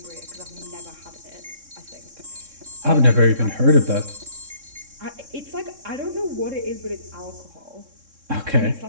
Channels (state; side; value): late; left; 3.6 ms